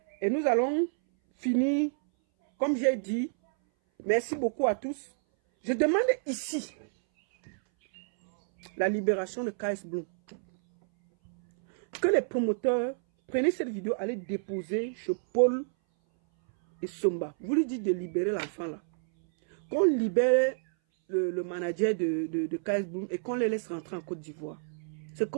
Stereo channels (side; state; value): left; silent; 59 dB below the other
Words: et nous allons finir. Comme j'ai dit, merci beaucoup à tous. Je demande ici la libération de KS Bloom. Que les promoteurs prennent cette vidéo, allez déposer chez Paul et Somba. Vous lui dites de libérer l'enfant là. Qu'on libère le manager de KS Bloom et qu'on les laisse rentrer en Côte d'Ivoire. Ce